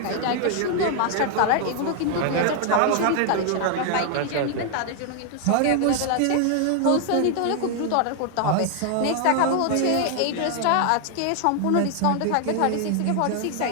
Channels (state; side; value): different; both; correlation 0.00